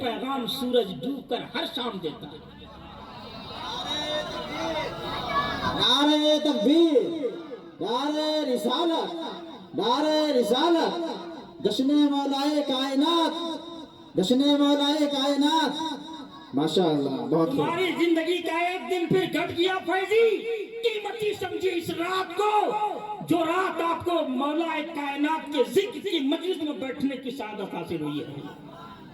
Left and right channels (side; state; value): both; identical; correlation 1.00